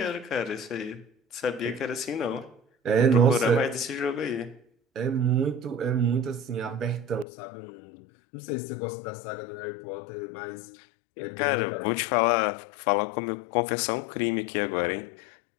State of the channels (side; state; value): right; drops out; at 7.2 s